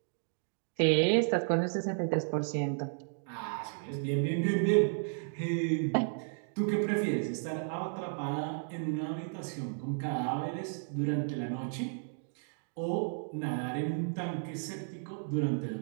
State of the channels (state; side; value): silent; left; digital silence